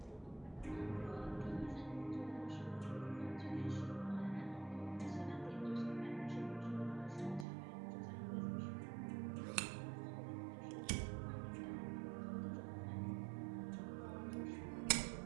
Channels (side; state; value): left; drops out; at 7.5 s